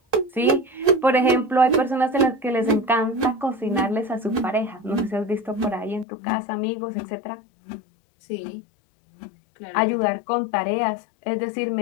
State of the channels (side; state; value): right; drops out; at 6.1 s